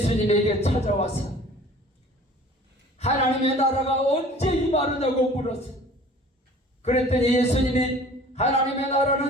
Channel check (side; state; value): both; normal; correlation 0.48